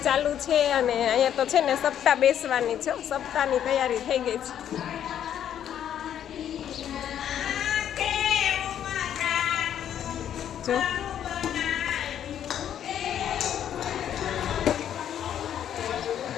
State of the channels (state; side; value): quieter; right; 10.0 dB